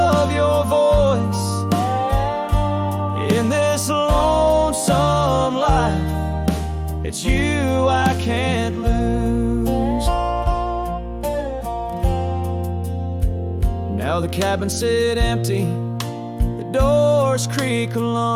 your voice. In this lonesome life, it's you I can't lose. Now the cabins sit empty, the doors creak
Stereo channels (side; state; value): both; identical; correlation 1.00